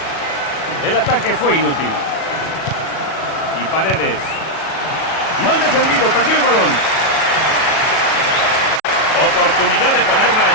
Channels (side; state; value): right; late; 37 ms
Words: El ataque fue inútil. Y Paredes. Mal defendido, perdió el balón. Oportunidad de ponerla